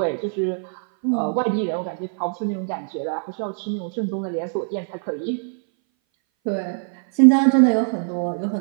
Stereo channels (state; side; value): silent; left; 60 dB below the other